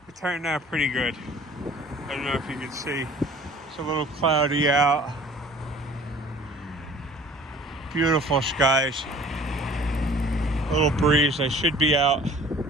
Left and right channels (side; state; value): both; normal; correlation 0.49